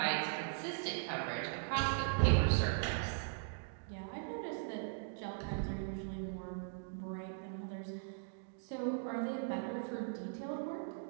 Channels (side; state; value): left; silent; digital silence